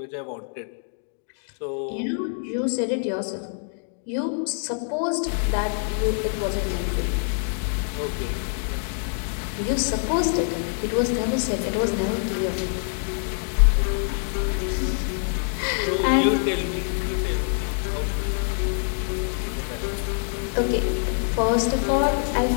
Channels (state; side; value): silent; right; 62 dB below the other